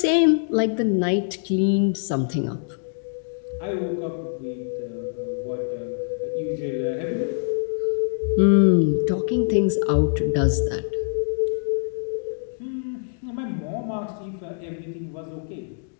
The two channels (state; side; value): silent; right; digital silence